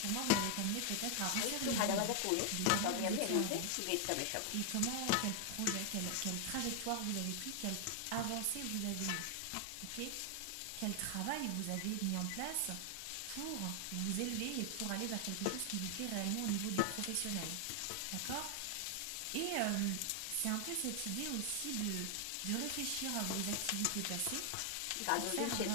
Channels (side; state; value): both; different; correlation 0.00